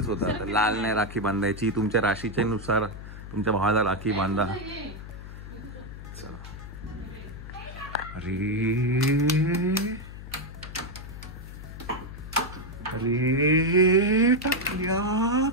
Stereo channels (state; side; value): noise; left; hum, 12 dB below the sound